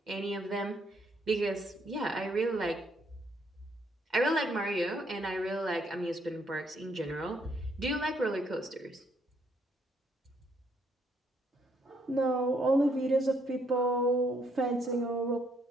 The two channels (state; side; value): normal; both; correlation 0.71